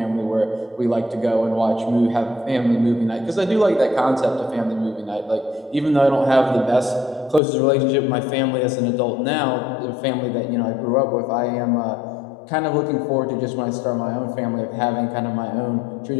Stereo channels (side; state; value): right; drops out; at 7.4 s